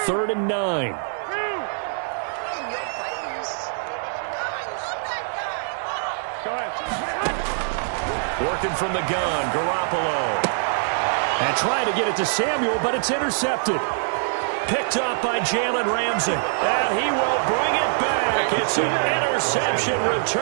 and 9. Working from the gun, Garoppolo. And trying to get it to Samuel, but it's intercepted. Picked up by Jalen Ramsey. And he will bring it back. It's an interception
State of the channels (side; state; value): left; silent; digital silence